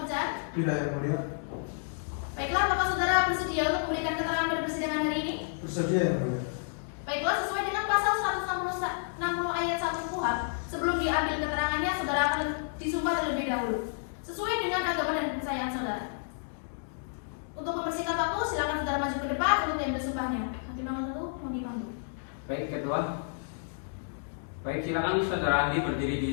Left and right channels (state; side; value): silent; right; digital silence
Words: Tidak yang mulia. Baiklah, apakah saudara bersedia untuk memberikan keterangan pada persidangan hari ini? Bersedia yang mulia. Baiklah, sesuai dengan pasal 160 ayat 1 KUHP, sebelum diambil keterangannya, saudara akan disumpah terlebih dahulu, sesuai dengan agama dan kepercayaan saudara. Untuk mempersingkat waktu, silakan saudara maju ke depan untuk diambil sumpahnya. Hakim nomor 1, mohon dipanggil. Baik, ketua. Baik, silakan saudara ahli berdiri di